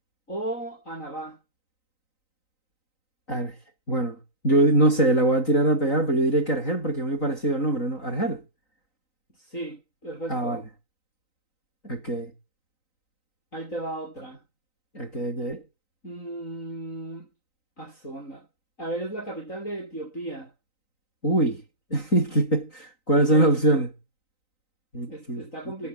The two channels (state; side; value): late; right; 3.9 ms